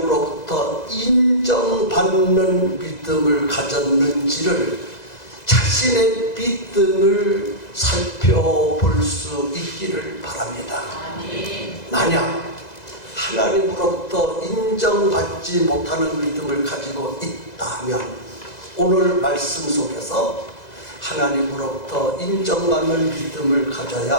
인정받는 믿음을 가졌는지를, 자신의 믿음을 살펴볼 수 있기를 바랍니다. 만약 하나님으로부터 인정받지 못하는 믿음을 가지고 있다면 오늘 말씀 속에서 하나님으로부터 인정받는 믿음을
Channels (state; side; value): late; right; 2.0 ms